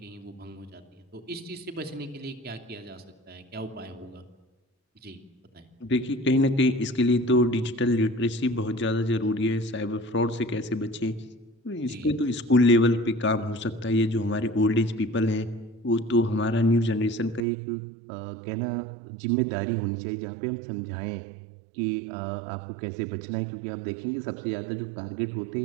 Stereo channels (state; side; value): drops out; left; at 17.4 s